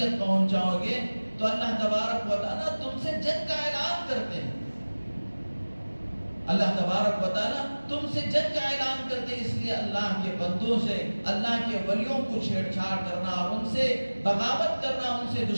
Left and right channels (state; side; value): inverted; both; correlation -1.00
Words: پہنچاؤ گے تو اللہ تبارک و تعالیٰ تم سے جنگ کا اعلان کرتے ہیں۔ اللہ تبارک و تعالیٰ تم سے جنگ کا اعلان کرتے ہیں، اس لیے اللہ کے بندوں سے، اللہ کے ولیوں کو چھیڑ چھاڑ کرنا اور ان سے بغاوت کرنا، ان سے